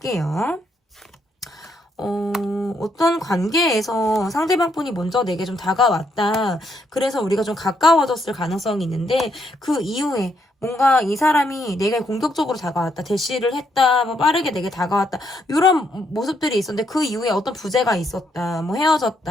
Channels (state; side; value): normal; both; correlation 0.75